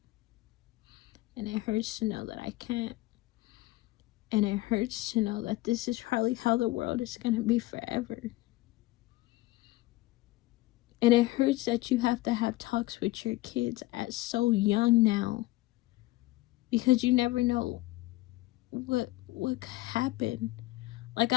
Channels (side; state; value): right; quieter; 18.6 dB